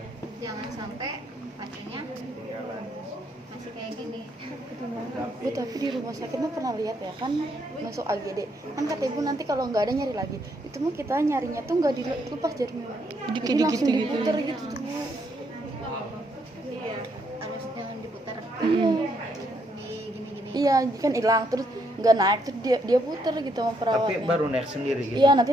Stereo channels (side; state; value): both; normal; correlation 0.74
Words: Jangan sampai pasiennya masih kayak gini. Bu, tapi di rumah sakit mah pernah lihat ya kan, masuk AGD kan kata ibu nanti kalau nggak ada nyari lagi. Itu mah kita nyarinya tuh nggak dilepas jarinya, jadi langsung diputer gitu tuh Bu. Iya, harus jangan diputar. Di gini-gini. Iya kan hilang terus nggak naik, terus dia puter gitu sama Tapi perawatnya. baru naik sendiri gitu. Iya,